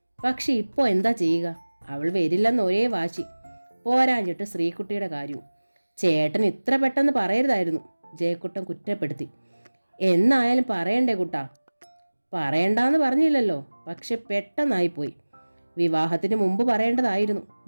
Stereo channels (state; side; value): inverted; both; correlation -1.00